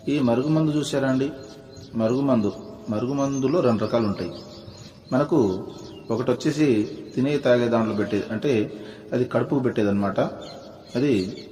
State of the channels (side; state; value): both; identical; correlation 1.00